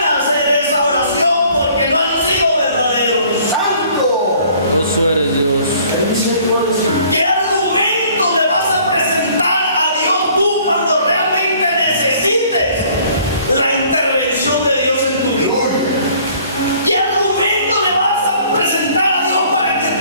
hacer esa oración porque no han sido verdaderos. ¡Santo! Vos eres Dios. ¿Qué argumento le vas a presentar a Dios tú cuando realmente necesites la intervención de Dios en tu vida? ¿Qué argumento le vas a presentar a Dios para que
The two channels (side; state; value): both; inverted; correlation -0.56